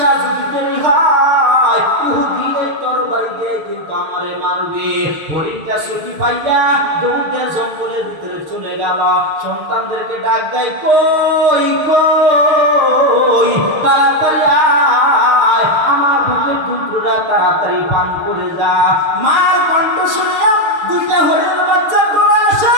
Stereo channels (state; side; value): late; left; 6.5 ms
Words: যদি দেরি হয় ইহুদি এই তরবারি দিয়ে কিন্তু আমারে মারবে। হরিণটা ছুটি পাইয়া দৌড়ে জঙ্গলের ভিতরে চলে গেল। সন্তানদেরকে ডাক দেয়, কই কই তাড়াতাড়ি আয়, আমার বুকের দুধটা তাড়াতাড়ি পান করে যা। মার কণ্ঠ শুনিয়া দুইটা হরিণের বাচ্চা করে আসে।